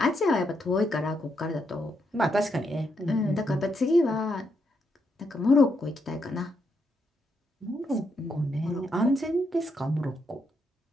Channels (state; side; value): normal; both; correlation 0.79